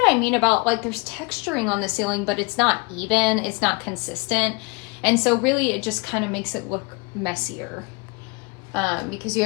I mean about, like, there's texturing on the ceiling, but it's not even, it's not consistent. And so really it just kind of makes it look messier. Because you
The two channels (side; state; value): right; quieter; 29.0 dB